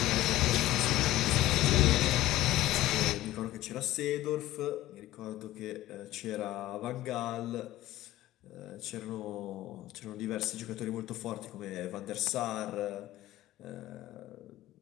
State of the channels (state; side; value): quieter; right; 15.5 dB